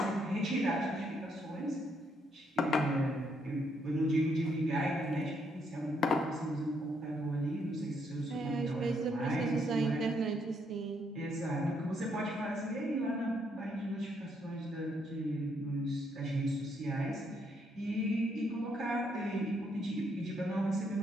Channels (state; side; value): normal; both; correlation 0.74